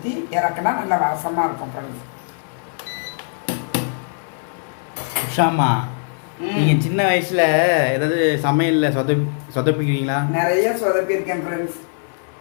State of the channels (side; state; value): right; silent; 56 dB below the other